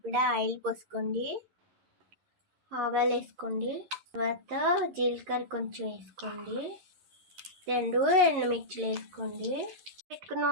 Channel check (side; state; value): left; late; 11 ms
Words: ఆయిల్ పోసుకోండి. ఆవాలు వేసుకోండి. తర్వాత జీలకర్ర కొంచెం వేసుకోండి. 2 ఎండుమిర్చిలు వేసుకోండి. పెట్టుకున్న